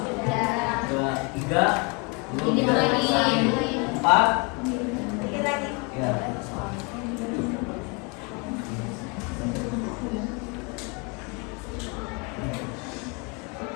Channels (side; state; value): right; quieter; 31.1 dB